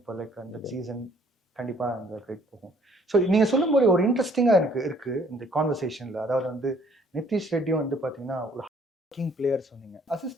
for like அந்த சீசன். கண்டிப்பா அந்த கிரெடிட் போகும். ஸோ நீங்க சொல்லும் போது ஒரு இன்ட்ரெஸ்டிங்கா எனக்கு இருக்கு இந்த கான்வர்சேஷன்ல. அதாவது வந்து நிதிஷ் ரெட்டியும் வந்து பாத்தீங்கன்னா ஒரு ஒர்க்கிங் பிளேயர் சொன்னீங்க.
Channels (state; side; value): normal; both; correlation 0.61